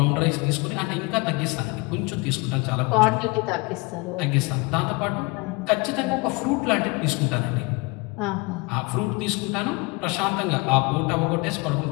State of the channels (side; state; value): right; quieter; 27.0 dB